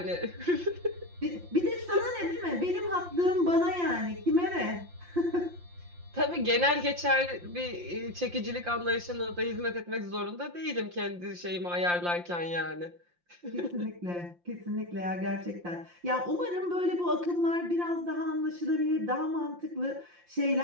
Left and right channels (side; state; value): left; late; 5.7 ms